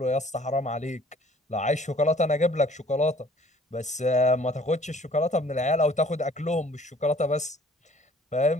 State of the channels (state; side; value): normal; both; correlation 0.55